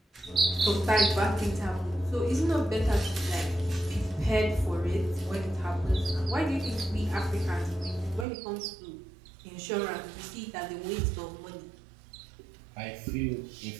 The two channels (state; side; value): drops out; left; at 8.2 s